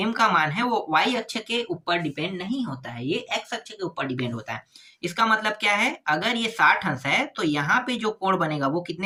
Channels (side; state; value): both; identical; correlation 1.00